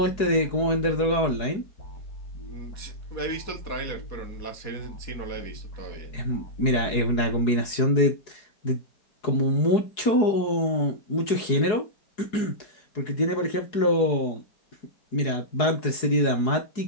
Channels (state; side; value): late; right; 4.7 ms